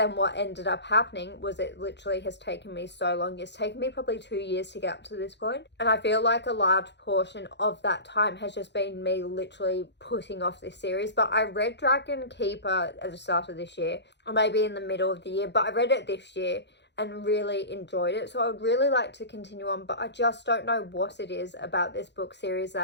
what ended up happening was it literally has taken me so long. It's taken me probably 2 years to get up to this point. And I feel like a large portion of that time has just been me literally putting off this series. But I read Dragon Keeper at the start of this year, or maybe in the middle of the year, but I read it this year and really enjoyed it. So I would really like to continue on, but I just don't know what it is about this book series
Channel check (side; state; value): right; late; 0.51 ms